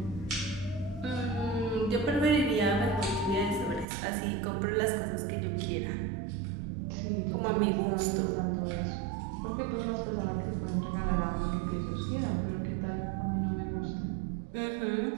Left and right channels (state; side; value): drops out; left; at 3.9 s